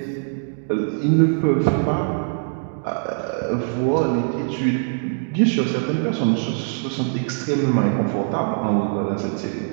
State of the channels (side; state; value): left; silent; digital silence